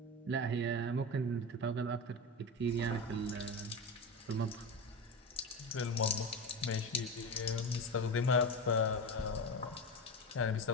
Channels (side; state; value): both; normal; correlation 0.22